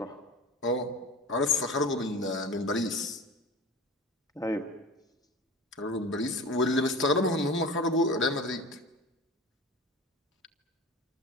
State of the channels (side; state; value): both; normal; correlation 0.34